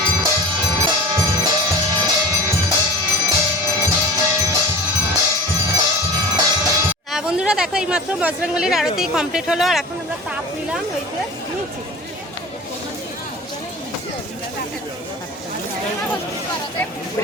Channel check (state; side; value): normal; both; correlation 0.37